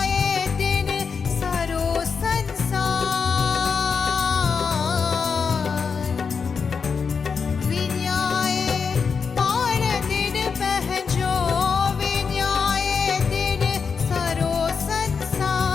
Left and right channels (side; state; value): right; quieter; 5.7 dB